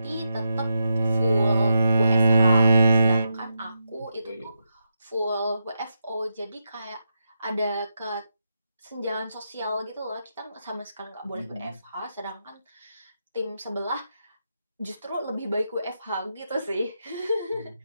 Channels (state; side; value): inverted; both; correlation -0.85